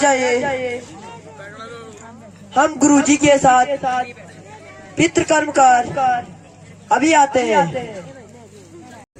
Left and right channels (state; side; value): identical; both; correlation 1.00